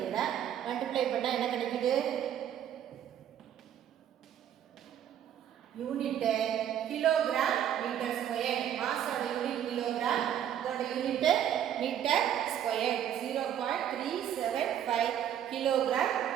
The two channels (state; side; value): quieter; left; 10.1 dB